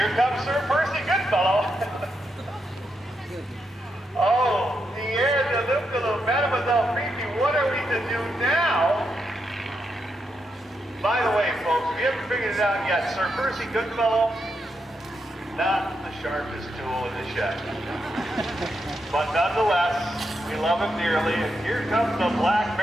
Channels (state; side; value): normal; both; correlation 0.83